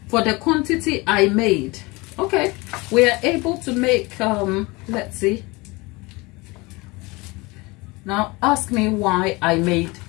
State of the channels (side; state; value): right; quieter; 24.4 dB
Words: For the quantity I made, okay, we are able to make, let's see. Now, ask me why I made